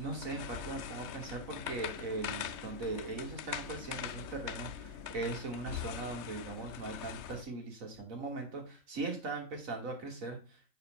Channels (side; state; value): left; late; 3.3 ms